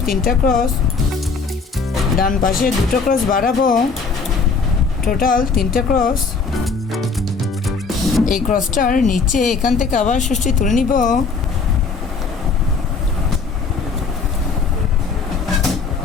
3টা ক্রস, ডান পাশে দুটো ক্রস বাড়াবো, টোটাল 3টে ক্রস। এই ক্রসটার নিচে এখান থেকে আবার সুচটি তুলে নিব।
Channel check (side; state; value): right; quieter; 4.9 dB